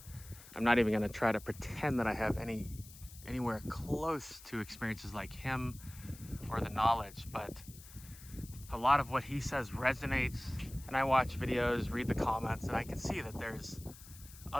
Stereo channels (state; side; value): noise; left; hiss, 18 dB below the sound